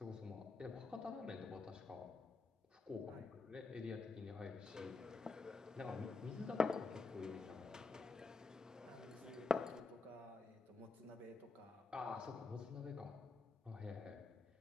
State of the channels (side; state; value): right; quieter; 3.7 dB